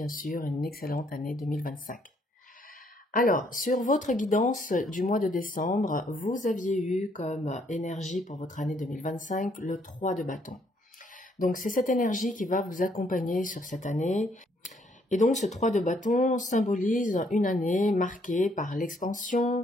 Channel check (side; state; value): both; normal; correlation 0.68